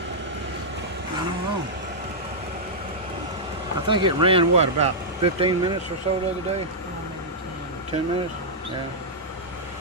I don't know. I think it ran what, about 15 minutes or so the other day? 10 minutes? Yeah.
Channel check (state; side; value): normal; both; correlation -0.08